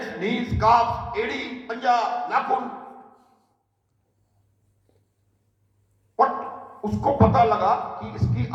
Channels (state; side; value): identical; both; correlation 1.00